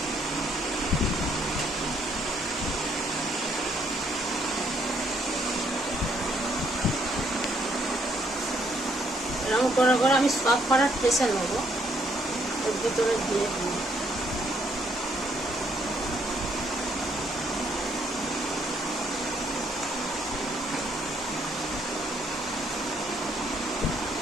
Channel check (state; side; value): normal; both; correlation 0.69